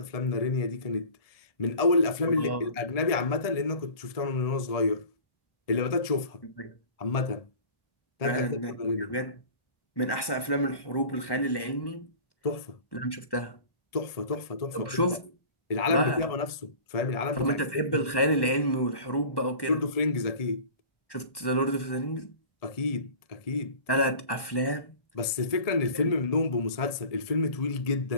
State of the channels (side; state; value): right; late; 1.1 ms